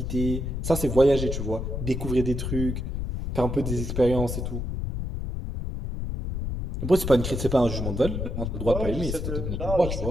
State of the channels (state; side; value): noise; left; rumble, 3 dB below the sound